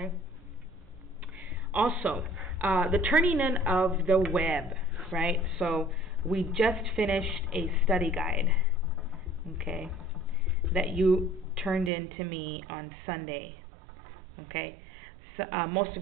Also, the turning in of the web, right? So we just finished a study guide, okay, that you turned in to me on Sunday, okay? So, most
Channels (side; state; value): left; drops out; at 11.9 s